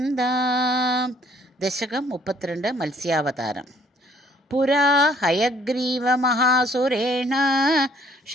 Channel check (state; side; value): normal; both; correlation 0.61